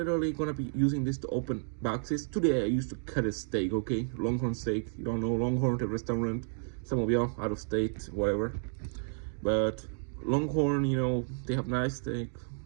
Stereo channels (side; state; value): left; silent; digital silence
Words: gonna be using this to open boxes. Today I used to cut a steak, okay? Longhorn steak. You don't know Longhorn, the restaurant. Some of y'all out of state, whatever. But Longhorn, they have nice steak.